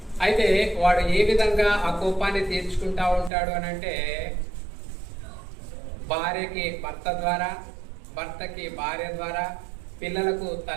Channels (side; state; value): left; drops out; at 3.3 s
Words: అయితే వాడు ఏ విధంగా ఆ కోపాన్ని తీర్చుకుంటా ఉంటాడు అని అంటే, భార్యకి భర్త ద్వారా, భర్తకి భార్య ద్వారా, పిల్లలకు